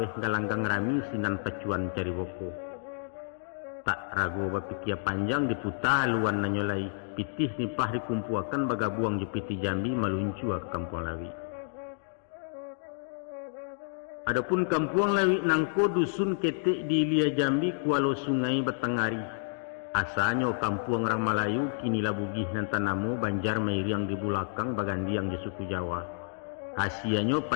galanggang rami sinan pacuan cari boko. Tak ragu bapikir panjang diputar luan nanyolai pitih nipah dikumpuakan bagabuang jepiti Jambi meluncu ke kampuang lawi. Adapun kampuang lawi nangko dusun ketek di Ilia Jambi kualo sungai Batangari. Asalnya kampuang orang Melayu kini labugih nan tanamu banjar mairiang di bulakang bagandiang di suku Jawa. Hasiannya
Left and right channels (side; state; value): right; silent; digital silence